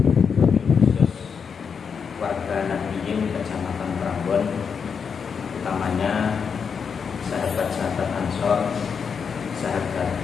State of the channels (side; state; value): right; quieter; 6.3 dB